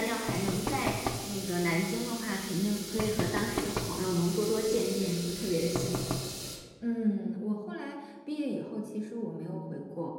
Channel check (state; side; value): identical; both; correlation 1.00